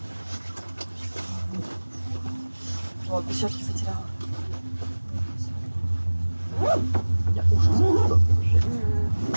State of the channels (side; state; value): both; inverted; correlation -1.00